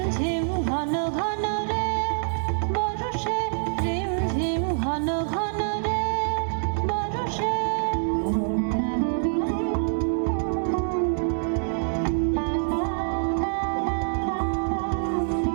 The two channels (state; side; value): silent; left; digital silence